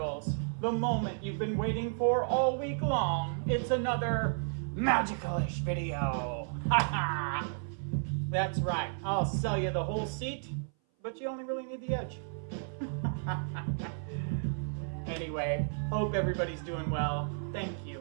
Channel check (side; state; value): left; silent; 56 dB below the other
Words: the moment you've been waiting for all week long, it's another Magical-ish video. Haha! That's right, I'll sell you the whole seat, but you only really need the edge. Anyway, hope everybody's doing well. Thank